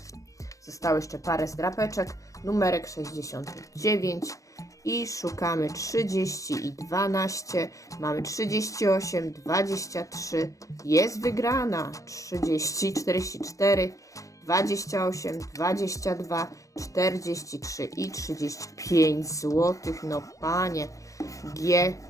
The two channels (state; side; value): late; right; 0.16 ms